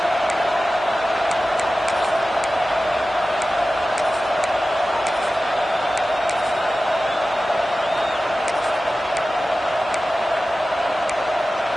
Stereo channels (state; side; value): normal; both; correlation 0.95